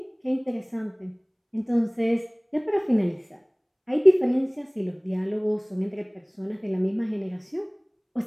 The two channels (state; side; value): identical; both; correlation 1.00